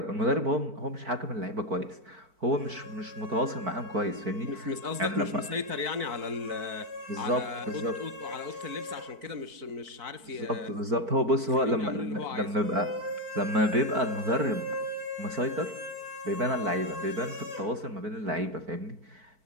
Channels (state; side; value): late; left; 4.5 ms